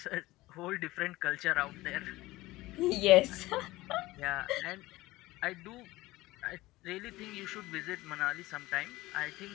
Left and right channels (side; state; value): right; quieter; 18.8 dB